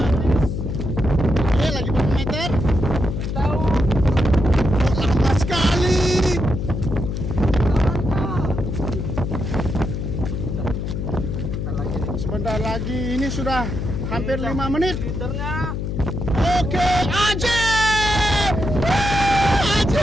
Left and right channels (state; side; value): noise; left; hum, 3 dB below the sound